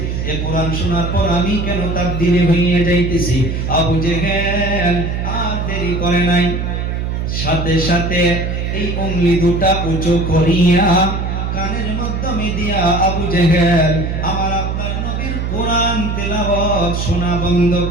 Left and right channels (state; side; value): noise; right; hum, 2 dB below the sound